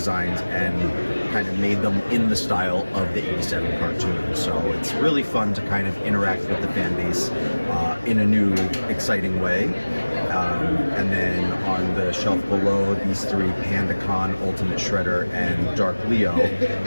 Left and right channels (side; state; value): both; inverted; correlation -1.00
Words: and kind of made them in the style of the 87 cartoon. So it's really fun to kind of interact with the fan base in a new, exciting way. And then on the shelf below, these 3, PandaCon, Ultimate Shredder, and Dark Leo.